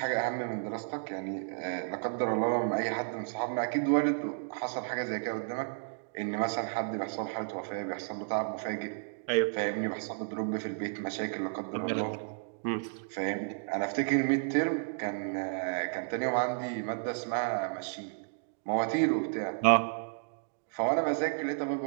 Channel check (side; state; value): left; silent; digital silence